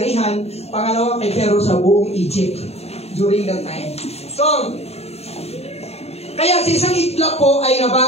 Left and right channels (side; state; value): right; late; 0.30 ms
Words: pangalawa kay Pharaoh sa buong Egypt during that time. So, kaya sa isang iglap po ay